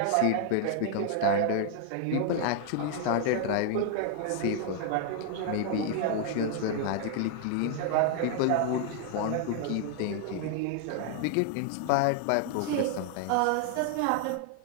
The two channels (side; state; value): both; different; correlation 0.00